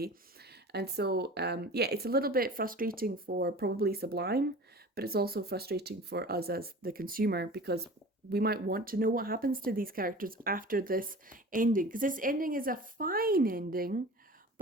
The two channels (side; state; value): both; normal; correlation 0.39